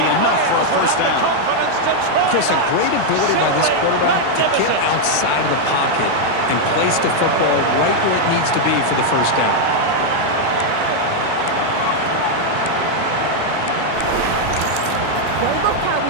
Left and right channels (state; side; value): different; both; correlation 0.00